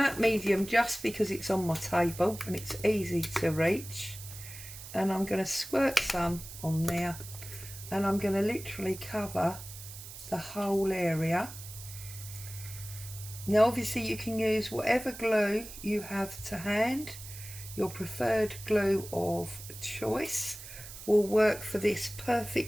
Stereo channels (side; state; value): right; noise; hiss, 13 dB below the sound